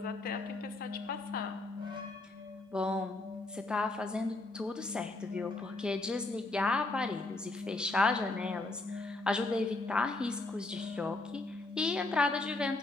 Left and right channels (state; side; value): quieter; right; 3.0 dB